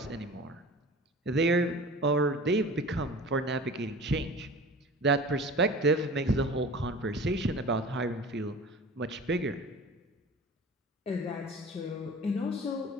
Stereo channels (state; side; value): normal; both; correlation 0.39